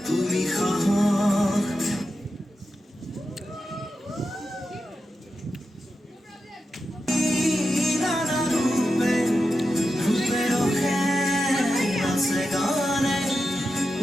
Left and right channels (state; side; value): normal; both; correlation 0.89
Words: তুমি সাহস নানা ৰূপে ৰূপে ৰখে আছে গানে